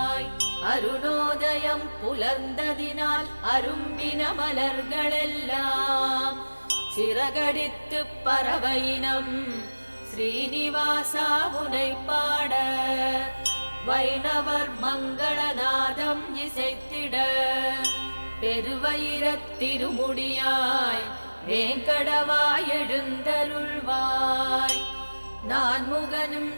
அருணோதயம் புலர்ந்ததினால் அரும்பின மலர்களெல்லாம் சிறகடித்து பறவையினம் ஸ்ரீனிவாசா உனை பாட வைணவர் மங்களநாதம் இசைத்திட பெருவயிரத் திருமுடியாய் வேங்கடவாய் எழுந்தருள்வாய் நான்முகனும்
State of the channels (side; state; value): both; inverted; correlation -1.00